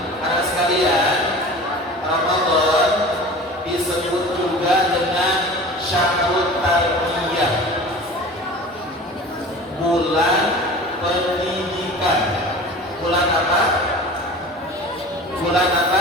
Anak sekalian, Ramadan disebut juga dengan Syahrul Tarbiyah, bulan pendidikan. Bulan apa? Bulan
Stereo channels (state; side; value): normal; both; correlation 0.39